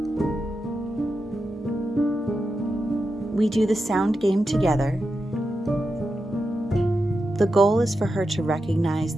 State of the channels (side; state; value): both; normal; correlation 0.88